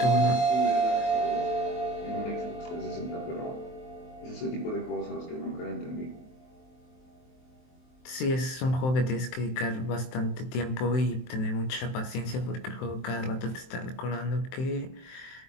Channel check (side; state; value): right; late; 23 ms